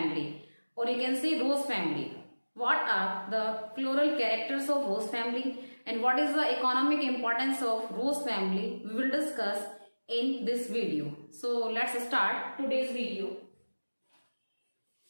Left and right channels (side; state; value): both; inverted; correlation -1.00